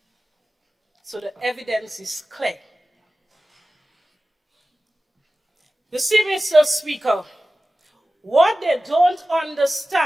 So the evidence is clear. You see, Mr. Speaker, what they don't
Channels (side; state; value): both; normal; correlation 0.96